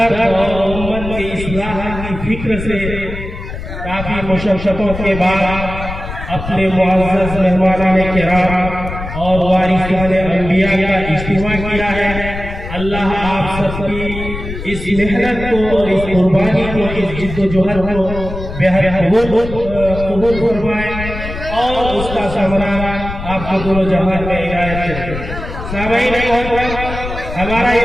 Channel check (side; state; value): left; noise; rumble, 8 dB below the sound